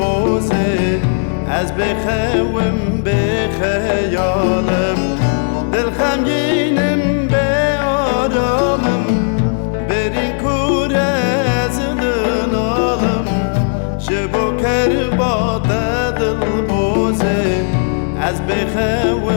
از بخوام بخیالم دل خمگینم به آرامم برین کوره از دنالم جبو کربات دل بوزه از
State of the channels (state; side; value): silent; right; digital silence